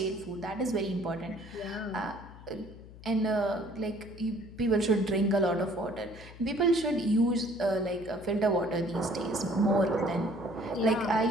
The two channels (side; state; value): left; noise; hum, 17 dB below the sound